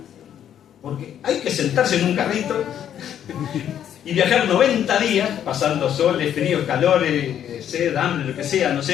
porque hay que sentarse en un carrito y viajar 90 días, pasando soles, fríos, calores, sed, hambre, lo que sea, no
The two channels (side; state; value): right; quieter; 9.9 dB